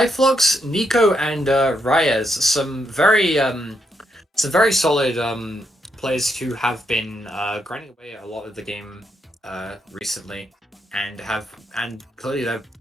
Nico, and Reyes. Some very solid players who have been grinding away a lot of the game recently, and clearly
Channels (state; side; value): normal; both; correlation 0.79